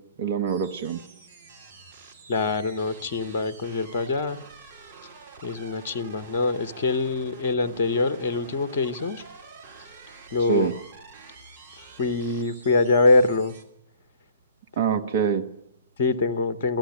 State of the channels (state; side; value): inverted; both; correlation -0.54